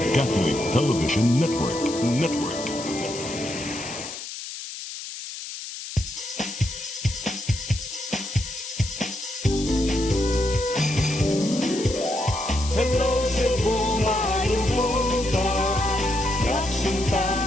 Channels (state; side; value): noise; left; hiss, 9 dB below the sound